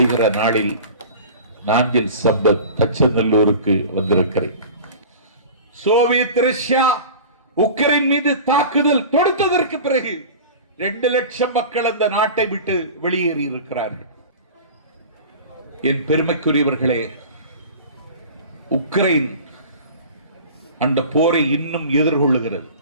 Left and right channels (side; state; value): both; inverted; correlation -0.37